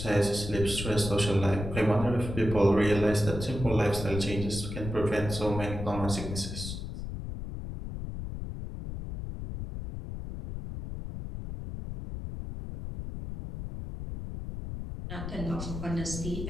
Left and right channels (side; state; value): left; noise; rumble, 7 dB below the sound